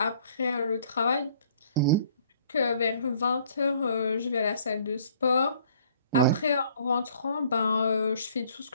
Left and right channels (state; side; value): inverted; both; correlation -0.58